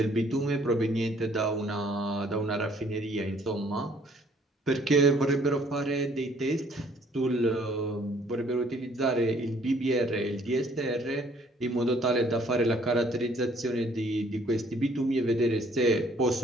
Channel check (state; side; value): normal; both; correlation 0.61